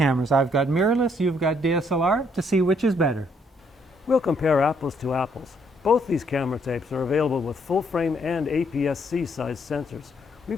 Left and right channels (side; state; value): both; normal; correlation 0.70